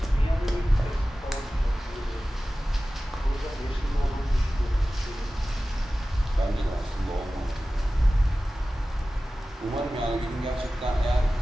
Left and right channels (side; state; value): both; normal; correlation 0.96